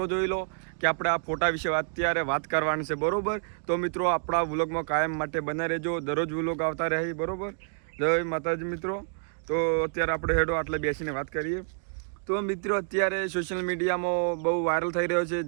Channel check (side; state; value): left; silent; 59 dB below the other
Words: જોઈ લો કે આપણે આ ફોટા વિશે અત્યારે વાત કરવાની છે, બરોબર? તો મિત્રો આપણા વ્લોગમાં કાયમ માટે બના રહેજો, દરરોજ વ્લોગ આવતા રહે, બરોબર? જય માતાજી મિત્રો। તો અત્યારે આપણે હેડો આટલે બેસીને વાત કરીએ। તો મિત્રો અત્યારે સોશિયલ મીડિયામાં બહુ વાયરલ થઈ રહ્યો છે,